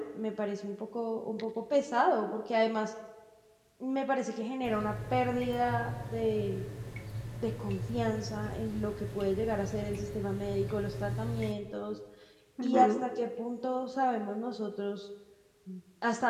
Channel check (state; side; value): identical; both; correlation 1.00